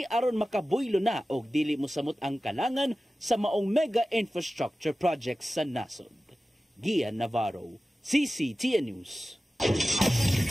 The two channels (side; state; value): both; normal; correlation 0.95